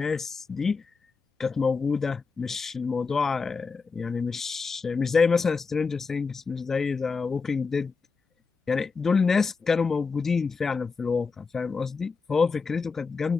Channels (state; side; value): quieter; right; 4.8 dB